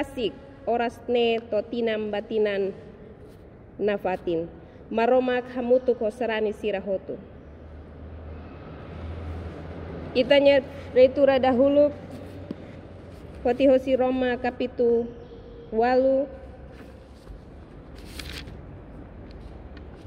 oras ne totinam batinan nafatin maromak hamutu kosarani sirahotu. Itanya reitura dahulu hoti hosi Roma kapitu walu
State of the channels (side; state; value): both; identical; correlation 1.00